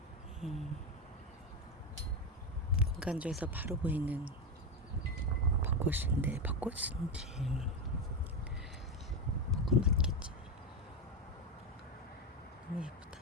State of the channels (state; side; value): normal; both; correlation 0.13